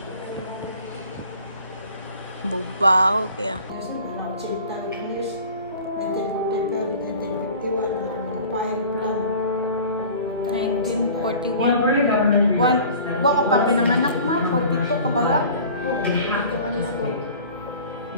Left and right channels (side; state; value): both; inverted; correlation -0.44